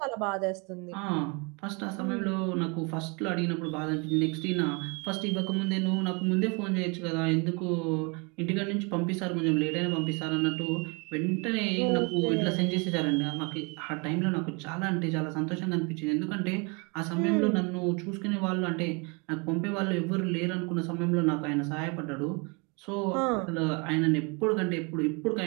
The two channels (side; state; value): left; quieter; 31.5 dB